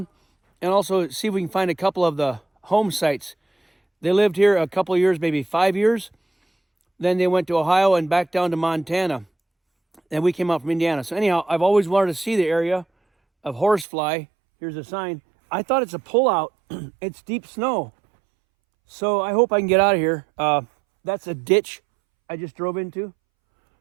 and also see if we can find a couple of the home sites. They lived here a couple of years, maybe 5 years. Then they went to Ohio and back down to Montana. And we came out from Indiana. So anyhow, I've always wanted to see the area of Horsefly. Here's a sign. I thought it's a pullout. It's deep snow. So I hope I can get out of here. That's a ditch I just drove into.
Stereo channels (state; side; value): drops out; left; at 13.9 s